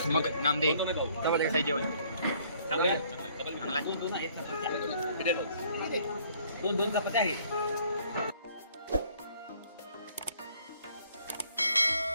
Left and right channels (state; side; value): inverted; both; correlation -0.61